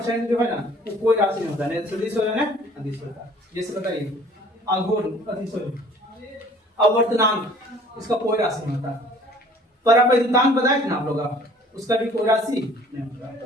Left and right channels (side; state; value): both; normal; correlation 0.53